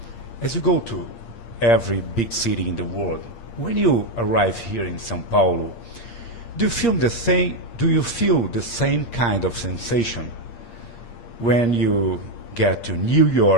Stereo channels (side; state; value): right; late; 8.6 ms